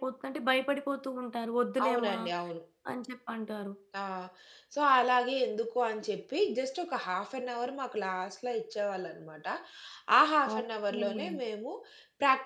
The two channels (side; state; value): both; identical; correlation 1.00